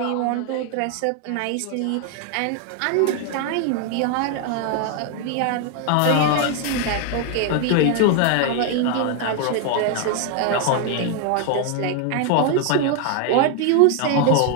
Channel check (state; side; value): different; both; correlation 0.00